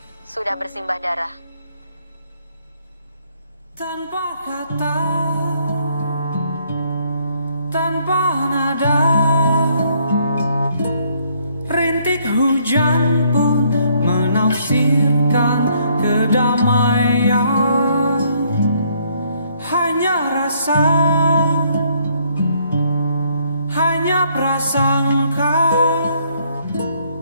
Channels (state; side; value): inverted; both; correlation -0.67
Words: sudah bersimbah darah. Tanpa kata, tanpa nada, rintik hujan pun menafsirkan kedamaian. Hanya rasa, hanya prasangka